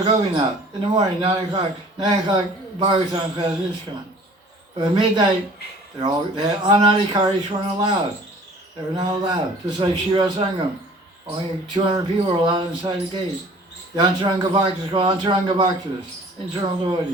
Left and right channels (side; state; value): both; normal; correlation 0.49